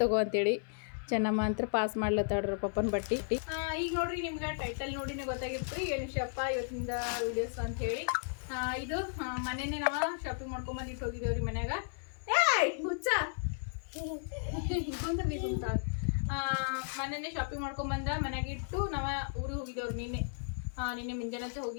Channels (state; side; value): silent; right; 55 dB below the other